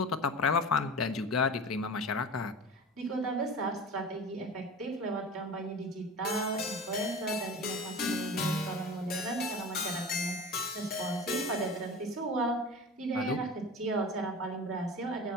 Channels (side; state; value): both; normal; correlation 0.34